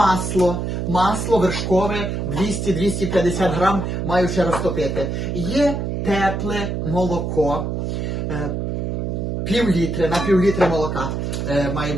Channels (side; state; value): right; noise; hum, 2 dB below the sound